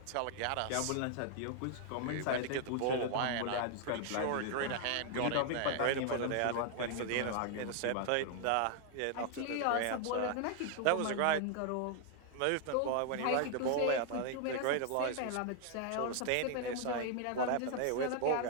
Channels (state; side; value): different; both; correlation 0.00